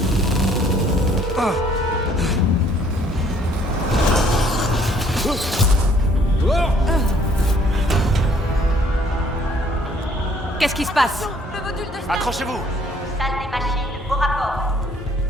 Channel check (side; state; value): both; normal; correlation 0.61